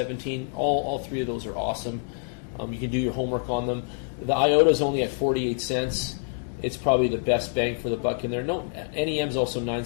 All three of those are awesome. You can do your homework on them. The IOTA is only at 48 cents. It's probably the best bang for the buck in there. No, NEM is also 9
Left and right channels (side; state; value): right; silent; digital silence